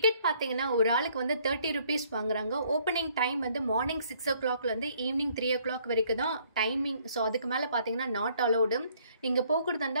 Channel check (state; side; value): inverted; both; correlation -0.64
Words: பார்த்தீங்கன்னா ஒரு ஆளுக்கு வந்து 30 rupees வாங்குறாங்க. ஓப்பனிங் டைம் வந்து மார்னிங் 6 o'clockலேருந்து ஈவினிங் 3 o'clock வரைக்கும் தான் டைமிங். ஸோ அதுக்கு மேலே பார்த்தீங்கன்னா நாட் அலௌடு. நீங்கள் போகிறதா